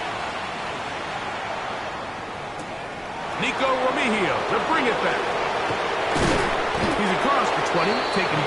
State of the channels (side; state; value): both; identical; correlation 1.00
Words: Nico Remigio to bring it back. He's across the 20, taken